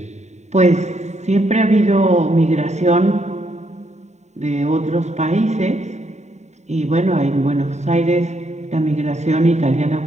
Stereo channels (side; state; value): left; late; 0.33 ms